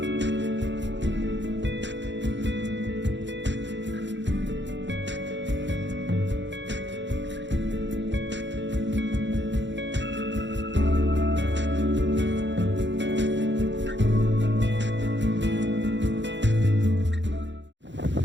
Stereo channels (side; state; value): left; late; 0.53 ms